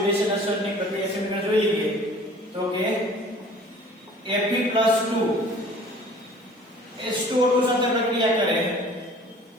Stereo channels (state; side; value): normal; both; correlation 0.49